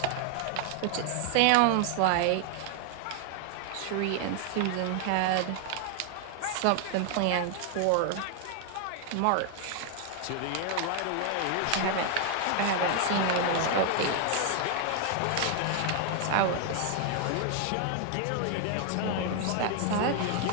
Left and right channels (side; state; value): both; different; correlation 0.00